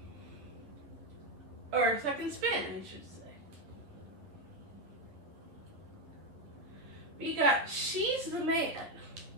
Or second spin, I should say. We got She's the Man.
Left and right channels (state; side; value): late; left; 10 ms